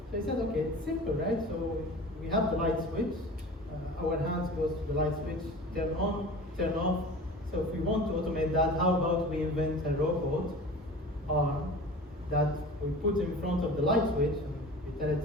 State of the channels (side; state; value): both; normal; correlation 0.38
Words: So I said, okay, it's simple, right? So we have the light switch, our hands goes to the light switch, turn on, turn off. So if we want to automate that, how about we invent a robot arm that we put in front of the light switch, and we tell it